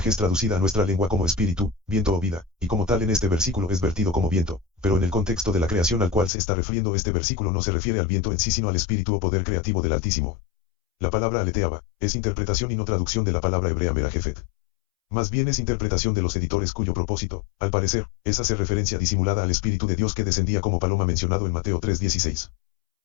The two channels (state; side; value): drops out; right; at 6.3 s